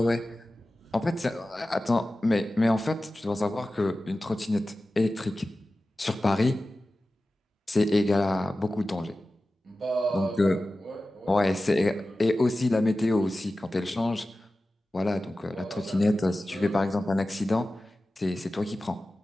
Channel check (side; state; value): both; normal; correlation 0.95